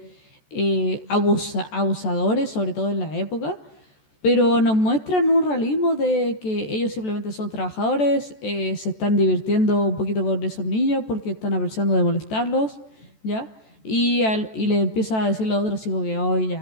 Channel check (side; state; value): right; late; 14 ms